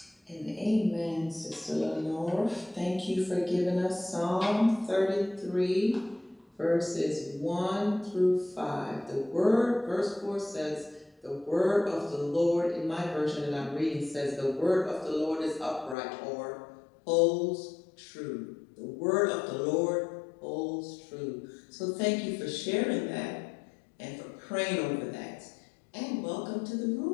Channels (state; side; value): drops out; right; at 16.0 s